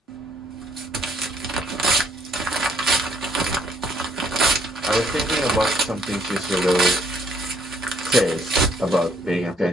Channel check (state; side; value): normal; both; correlation 0.66